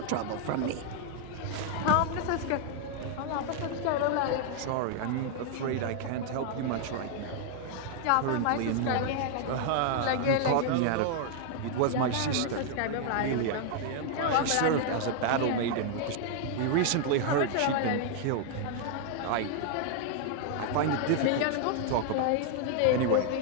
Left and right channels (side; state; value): both; different; correlation 0.00